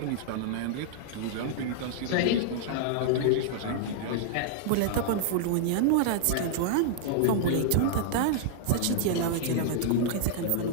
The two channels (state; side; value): different; both; correlation -0.01